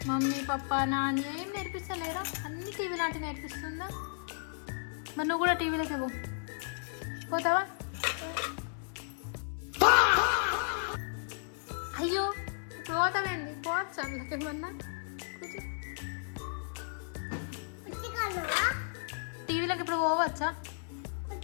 మమ్మీ పప్ప నాన్న ఏం నేర్పిస్తలేరా? అన్ని టీవీ లాంటి నేర్పిస్తుందా? మరి నువ్వు కూడా టీవీలోకి పోతావా? అయ్యో, ఇప్పుడు పోతావేంది? పోవచ్చు అందులోకి ఏమన్నా. టీవీలోకి ఇప్పుడు పోవచ్చా?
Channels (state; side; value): silent; right; 55 dB below the other